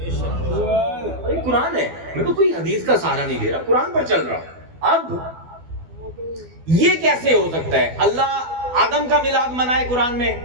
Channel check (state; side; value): late; left; 12 ms